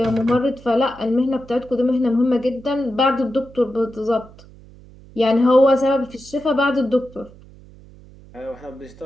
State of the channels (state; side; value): noise; right; hum, 22 dB below the sound